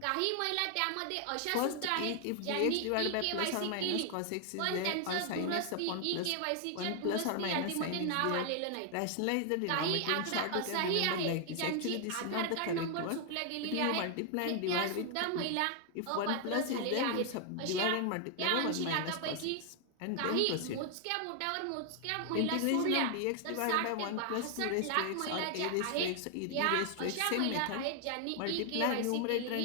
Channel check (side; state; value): both; different; correlation 0.00